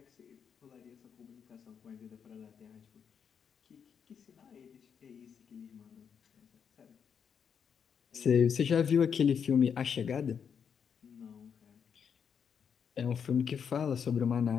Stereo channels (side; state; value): right; quieter; 7.2 dB